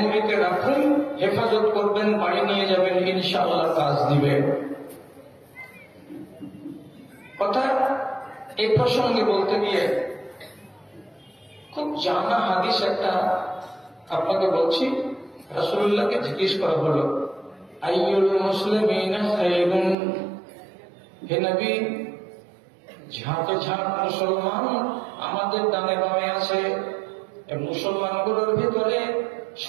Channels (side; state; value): left; drops out; at 20.0 s